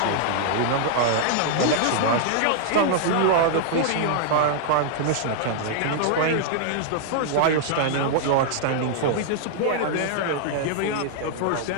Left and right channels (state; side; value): different; both; correlation -0.01